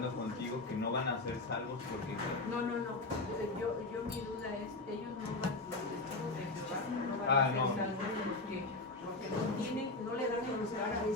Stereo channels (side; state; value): right; quieter; 3.2 dB